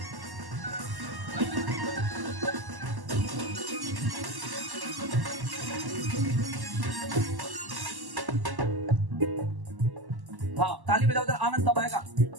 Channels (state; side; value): late; left; 1.1 ms